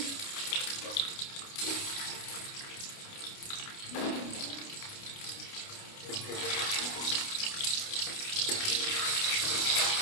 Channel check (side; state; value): right; late; 29 ms